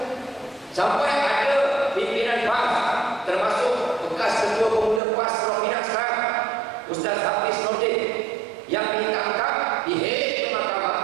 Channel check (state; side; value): drops out; left; at 5.0 s